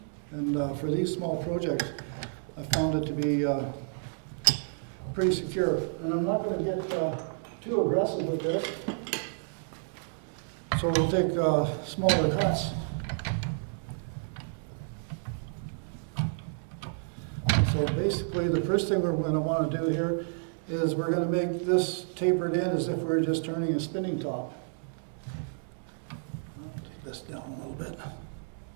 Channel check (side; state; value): left; silent; digital silence